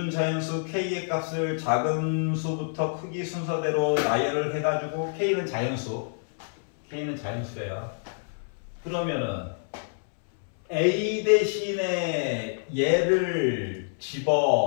자연수 K의 값을 작은 수부터 크기 순서대로 나열을 해가지고 K는 자연수래요. 그러면은 A 대신에 얘를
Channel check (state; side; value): silent; right; 60 dB below the other